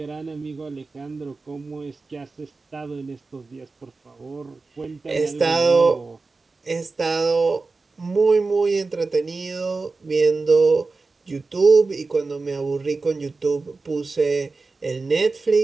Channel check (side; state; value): left; quieter; 3.9 dB